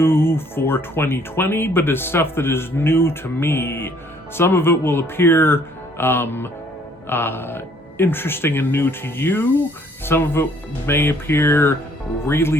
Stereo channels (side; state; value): both; normal; correlation 0.62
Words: for 2020, but is stuff that is new to me. Some of it will appear interesting and new to you. Some of it may appear